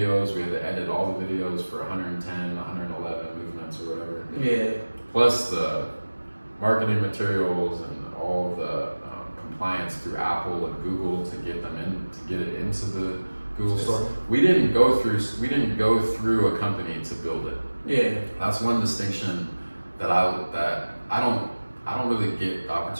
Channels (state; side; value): inverted; both; correlation -1.00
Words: We had to edit all the videos for 110, 111 movements or whatever. Yeah. Plus the marketing materials and all the compliance through Apple and Google to get it into the Google store. We didn't go through a company to build it. Yeah. That's one distinction that I don't really get the